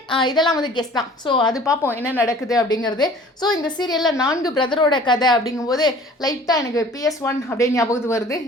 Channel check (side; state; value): both; normal; correlation 0.48